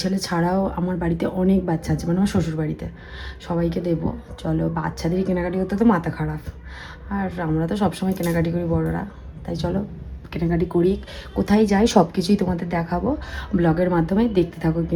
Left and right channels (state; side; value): identical; both; correlation 1.00